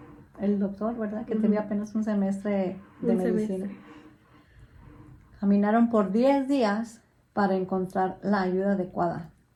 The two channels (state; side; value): identical; both; correlation 1.00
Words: el doctor, ¿verdad? Que tenía apenas un semestre de medicina. Caminaron por 10 días para encontrar la ayuda adecuada.